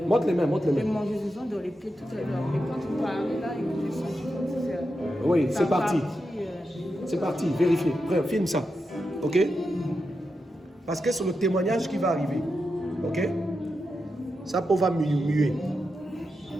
Montre les mains, montre les mains. démangeaison dans les pieds tout à l'heure. Mais quand tu parlais là, j'ai senti comme si Oui, ça c'est parti. partit, C'est parti, vérifiez. Frère, filme ça. Ok? Parce que c'est le témoignage qui va arriver. Ok? Ça peau va muer.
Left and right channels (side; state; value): both; normal; correlation 0.88